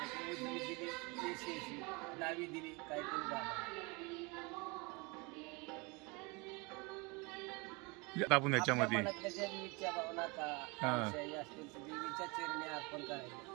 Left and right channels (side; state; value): left; quieter; 27.7 dB